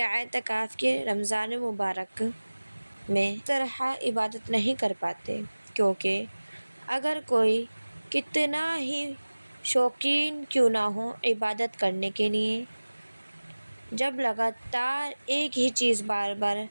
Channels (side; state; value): both; inverted; correlation -1.00